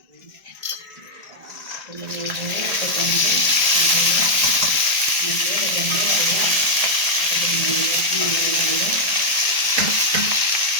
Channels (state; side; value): late; left; 1.8 ms